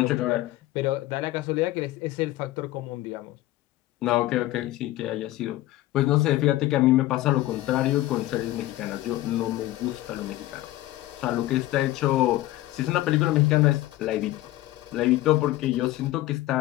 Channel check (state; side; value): quieter; right; 16.2 dB